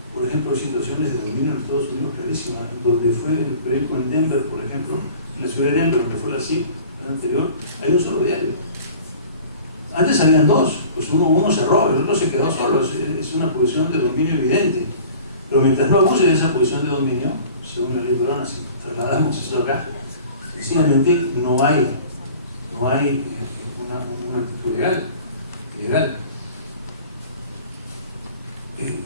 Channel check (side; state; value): both; inverted; correlation -0.45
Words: Por ejemplo, situaciones de dominio en Estados Unidos clarísimas, donde fue el periódico en Denver, por ejemplo, en la ciudad de Denver, donde fue la CIP, el anterior, hay un solo diario. Antes habían 2, pues uno cerró, el otro se quedó solo, es una posición de dominio evidente. Pero mientras no abuse de esa posición de dominio, según la ley peruana, si trasladamos eso acá, sencillamente no hay una actitud legal.